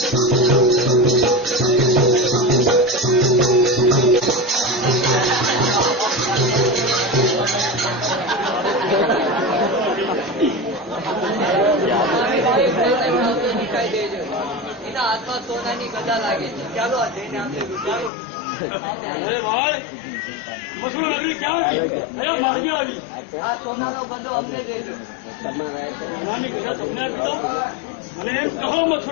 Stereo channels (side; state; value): right; drops out; at 18.1 s